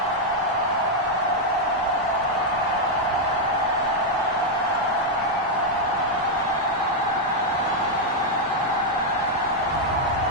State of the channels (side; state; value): both; normal; correlation -0.01